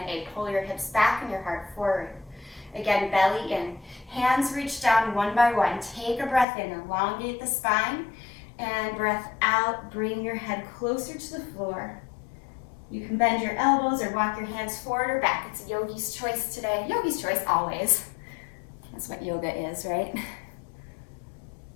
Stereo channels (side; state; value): right; drops out; at 6.5 s